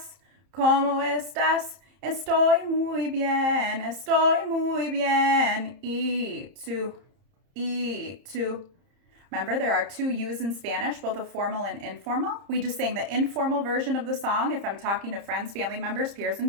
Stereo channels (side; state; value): left; late; 30 ms